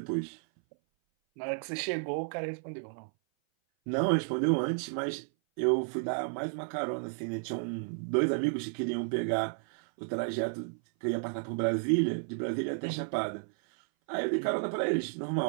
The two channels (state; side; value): silent; left; 56 dB below the other